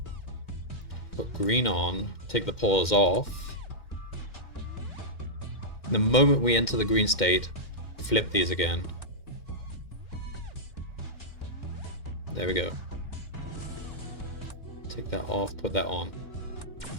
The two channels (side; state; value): right; late; 2.1 ms